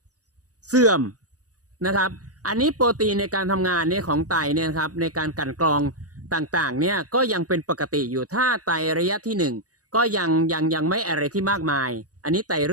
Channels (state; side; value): late; left; 0.67 ms